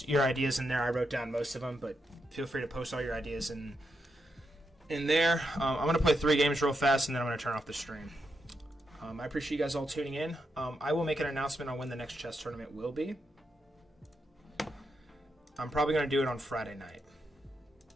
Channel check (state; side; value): normal; both; correlation 0.83